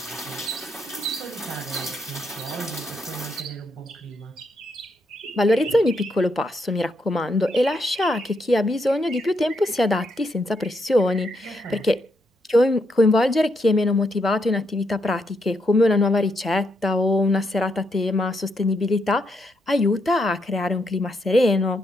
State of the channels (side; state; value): both; normal; correlation 0.79